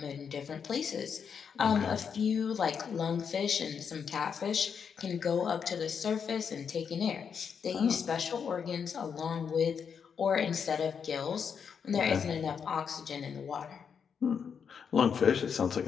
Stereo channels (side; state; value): right; quieter; 6.8 dB